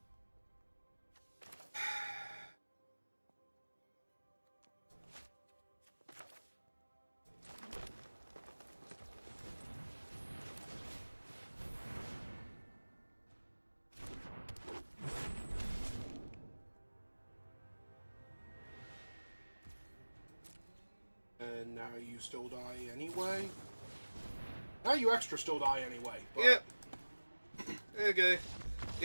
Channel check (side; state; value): both; inverted; correlation -1.00